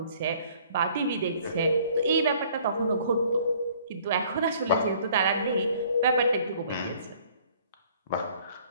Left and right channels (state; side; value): inverted; both; correlation -0.57